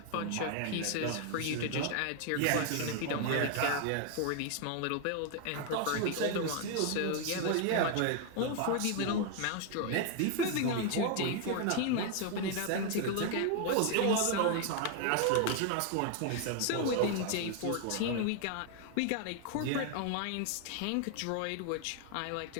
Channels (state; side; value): different; both; correlation 0.00